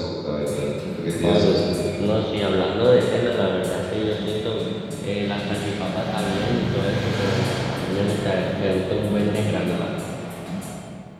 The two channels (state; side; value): identical; both; correlation 1.00